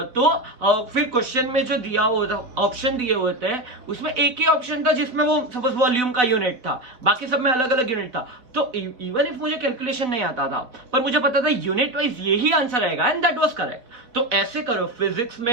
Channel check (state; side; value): late; left; 4.1 ms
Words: क्वेश्चन में जो दिया हुआ ऑप्शन दिए हुए थे उसमें एक ही ऑप्शन था जिसमें वो सपोज वॉल्यूम का यूनिट था, बाकी सब में अलग अलग यूनिट था। तो इवन इफ मुझे कैलकुलेशन नहीं आता था पर मुझे पता था यूनिट वाइज यही आंसर आएगा एंड दैट वाज करेक्ट। तो ऐसे करो, फिजिक्स